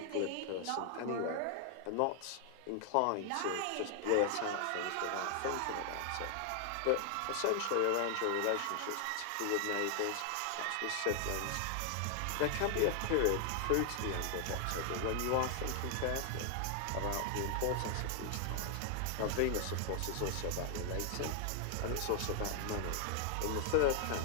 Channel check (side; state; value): both; different; correlation 0.00